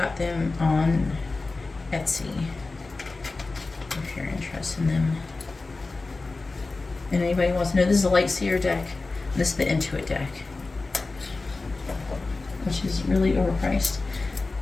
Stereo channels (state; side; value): quieter; right; 3.6 dB